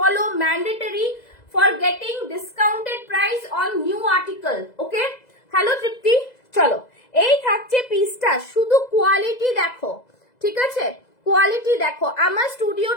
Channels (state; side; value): late; right; 2.0 ms